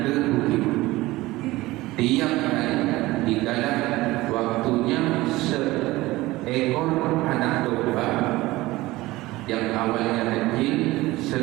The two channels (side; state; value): left; quieter; 18.9 dB